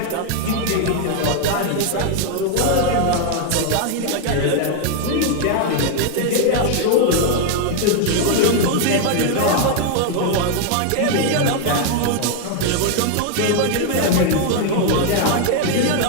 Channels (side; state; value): both; different; correlation 0.00